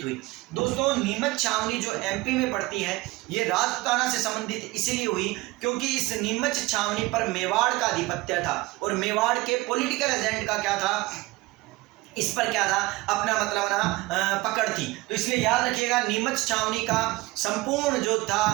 हुई दोस्तों, नीमच छावनी जो एमपी में पड़ती है ये राजपूताना से संबंधित इसलिए हुई क्योंकि इस नीमच छावनी पर मेवाड़ का आधिपत्य था और मेवाड़ के पॉलिटिकल एजेंट का क्या था, इस पर क्या था, अपना मतलब ना पकड़ थी। तो इसलिए याद रखिएगा नीमच छावनी का संपूर्ण जो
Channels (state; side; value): quieter; left; 20.8 dB